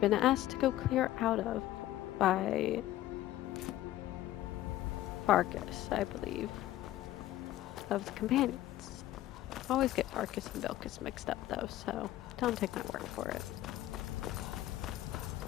asked to go clear out of by Farkas, I believe, of the companions. I always get Farkas and Vilkas mixed up though, so don't take my word for it.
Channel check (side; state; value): right; quieter; 14.4 dB